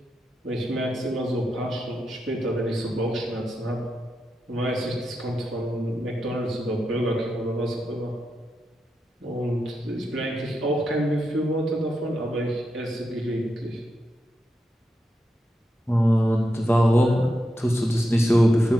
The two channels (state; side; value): normal; both; correlation 0.87